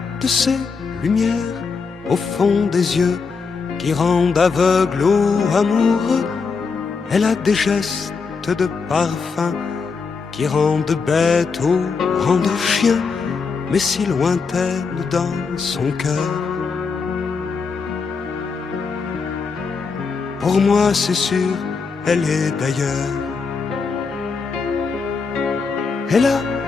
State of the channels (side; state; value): right; quieter; 5.0 dB